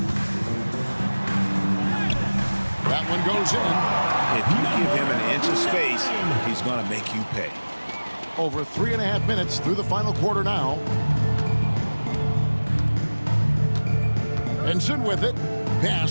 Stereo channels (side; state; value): both; inverted; correlation -1.00